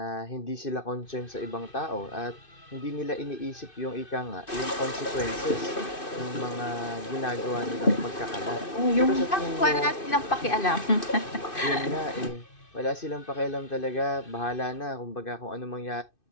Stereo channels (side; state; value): right; late; 2.6 ms